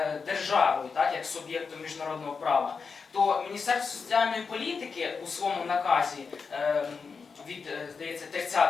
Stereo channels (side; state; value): right; quieter; 5.2 dB